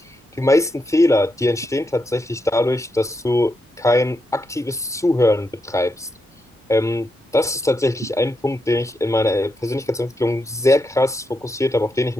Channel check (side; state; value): both; normal; correlation 0.83